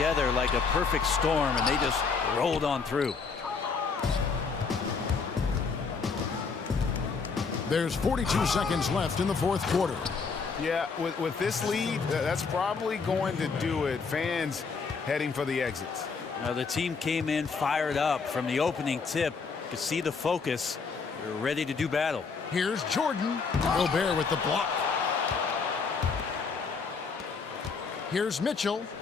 like a perfect storm, and they just rolled on through. There's 42 seconds left in the fourth quarter. Yeah, with this lead, that's probably going to do it. Fans heading for the exits. Now the team came in fired up from the opening tip. You could see the focus. They're ready to do battle. Here's Jordan. Gobert with the block. Here's Mitchell.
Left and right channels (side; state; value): right; quieter; 5.1 dB